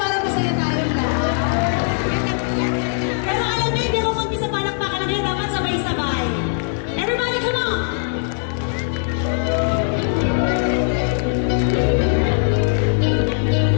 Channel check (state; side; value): silent; right; 58 dB below the other